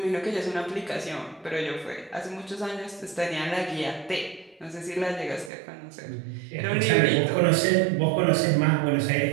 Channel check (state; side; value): drops out; left; at 5.5 s